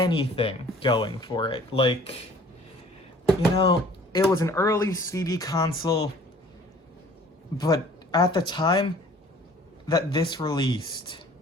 going for it. Like, you know, it was an early CD console, but at the time that this released,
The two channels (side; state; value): both; normal; correlation 0.51